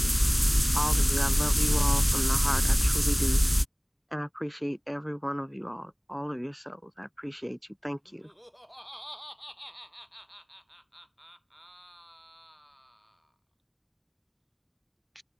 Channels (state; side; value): identical; both; correlation 1.00